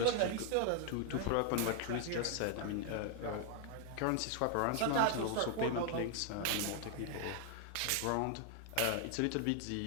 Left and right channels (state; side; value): different; both; correlation 0.00